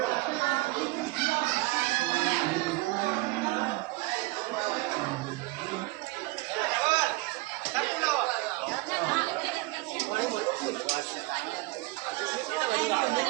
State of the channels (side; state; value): left; quieter; 22.2 dB